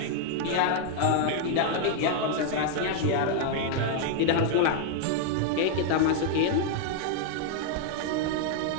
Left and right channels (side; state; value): both; different; correlation 0.00